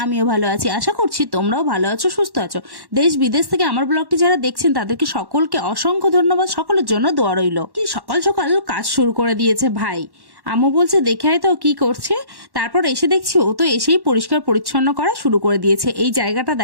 আমিও ভালো আছি। আশা করছি তোমরাও ভালো আছো, সুস্থ আছো। দেশ বিদেশ থেকে আমার ব্লগটি যারা দেখছেন তাদেরকে সকলকে অসংখ্য ধন্যবাদ। সকলের জন্য দোয়া রইল। কি সকাল সকাল কাজ শুরু করে দিয়েছে ভাই। আম্মু বলছে দেখে আয় তো কি করছে। তারপর এসে দেখছি ও তো এসেই পরিষ্কার পরিচ্ছন্ন করা শুরু করে দিয়েছে। এই জায়গাটা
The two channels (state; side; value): late; left; 1.1 ms